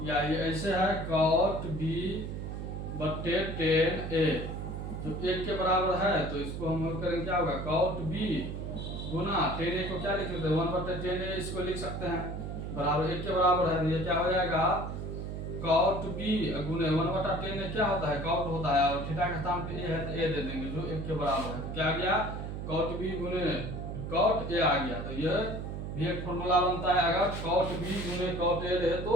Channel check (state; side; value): noise; right; hum, 6 dB below the sound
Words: या ये ऐसे है कॉट बी बट्टे टेन ए जो 1 के बराबर है, तो इसको हम करेंगे क्या होगा, कॉट बी गुना टेन ए को क्या लिख सकते हैं, 1 बट्टे टेन ए इसको लिख सकते हैं, बराबर 1 के बराबर है, तो ये क्या हो जाएगा, कॉट बी गुने 1 बटा टेन ए क्या होता है, कॉट होता है, और थीटा का स्थान पे ए है तो ए दे देंगे जो 1 के बराबर है। तो क्या आ गया, कॉट बी गुने कॉट ए आ गया। तो ये भी एक फॉर्मूला बनता है, अगर कॉट बी गुने कॉट ए रहे